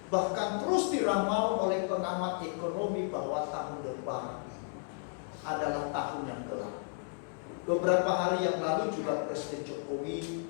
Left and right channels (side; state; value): right; silent; 56 dB below the other